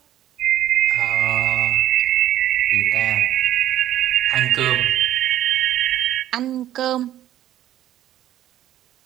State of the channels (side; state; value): left; quieter; 12.6 dB